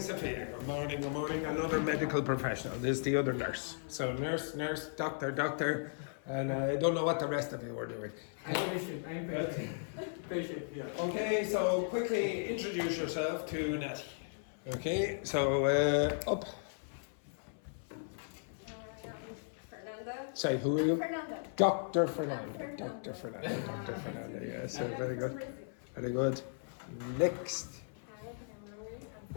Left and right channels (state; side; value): silent; right; 53 dB below the other